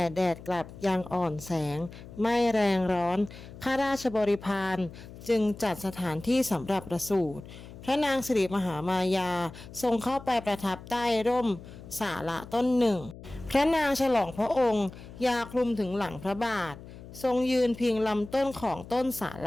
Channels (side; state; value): left; noise; hum, 16 dB below the sound